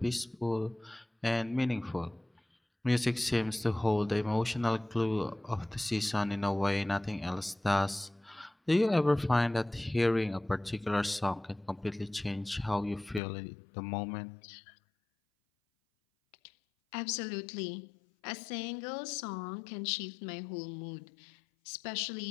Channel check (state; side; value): drops out; right; at 13.2 s